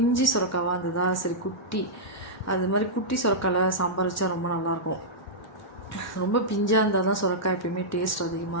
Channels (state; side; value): normal; both; correlation -0.10